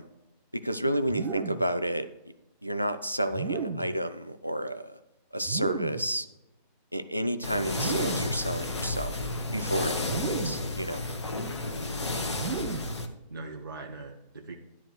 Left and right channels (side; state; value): both; inverted; correlation -0.67